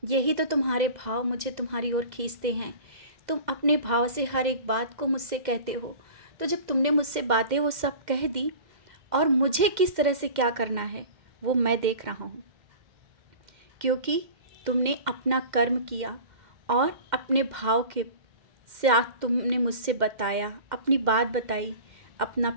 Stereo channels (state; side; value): late; left; 2.1 ms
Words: यही तो तुम्हारे भाव मुझे तुम्हारी ओर खींचते हैं। तुम अपने भाव से हर एक बात को मुझसे कहते हो। तो जब तुमने मुझसे बातें वो सब कह दी, और मुझे किस तरह से क्या करना है वो मैं देख रहा हूँ, क्योंकि तुमने अपना कर्म किया और अपने भाव के साथ तुमने मुझसे बताया, अपनी बात बताई, अपना